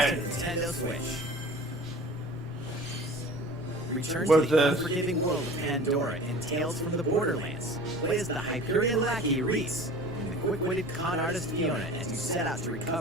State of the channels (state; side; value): normal; both; correlation 0.41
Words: Nintendo Switch. Return What's to the this? unforgiving world of Pandora in Tales from the Borderlands. Play as the Hyperion lackey Reese and the quick-witted con artist Fiona as you set out to